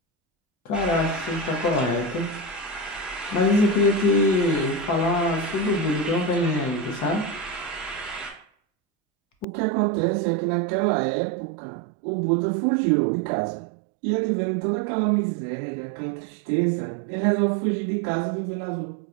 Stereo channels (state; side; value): drops out; left; at 9.5 s